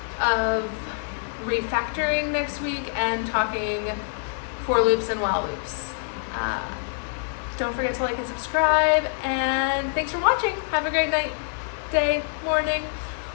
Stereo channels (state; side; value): silent; right; 60 dB below the other